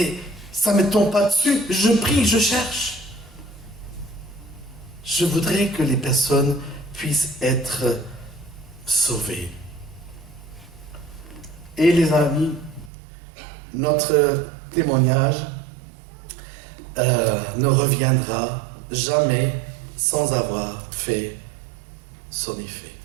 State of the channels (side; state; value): left; drops out; at 12.9 s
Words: ça ne me tombe pas dessus. Je prie, je cherche. Je voudrais que les personnes puissent être sauvées. Et les amis, notre témoignage ne reviendra jamais sans avoir fait son effet.